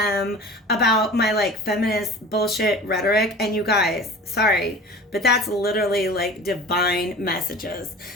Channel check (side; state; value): both; normal; correlation 0.39